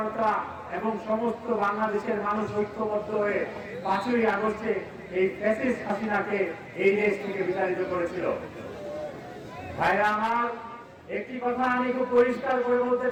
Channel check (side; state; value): both; identical; correlation 1.00